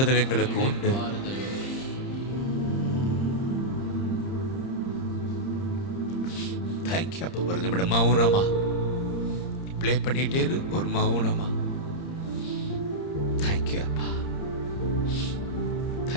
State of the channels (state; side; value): late; right; 30 ms